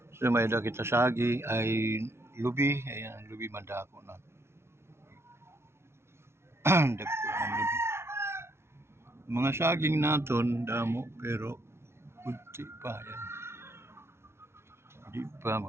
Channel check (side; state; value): left; late; 0.12 ms